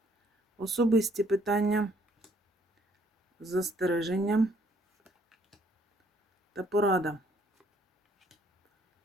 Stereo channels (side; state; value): both; normal; correlation 0.65